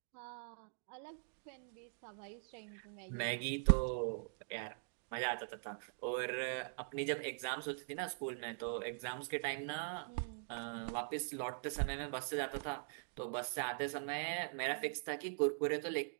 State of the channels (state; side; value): silent; left; digital silence